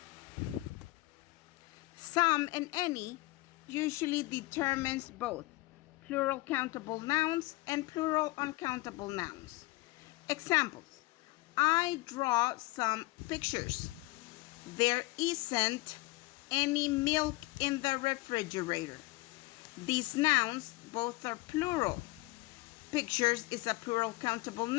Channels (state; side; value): quieter; right; 21.2 dB